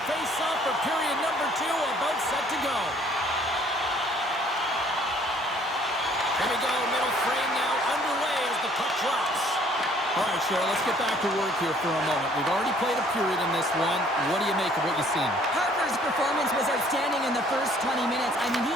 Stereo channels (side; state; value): both; normal; correlation 0.59